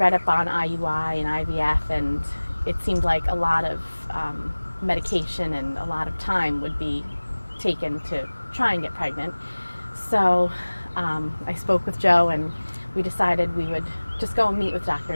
up on IUI and IVF, and it seemed like a lot of medication and a lot of time would be taken to try and get pregnant. So I spoke with Joe, and we decided we would just go and meet with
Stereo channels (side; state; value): both; inverted; correlation -1.00